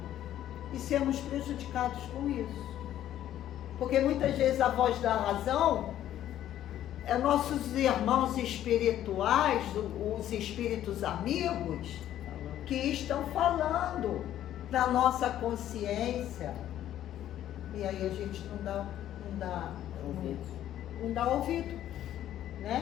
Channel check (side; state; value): right; quieter; 11.9 dB